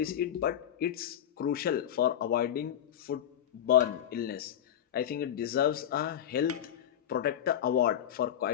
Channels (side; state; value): right; quieter; 10.2 dB